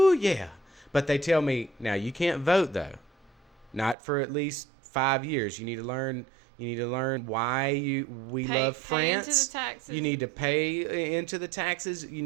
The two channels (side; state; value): left; drops out; at 4.0 s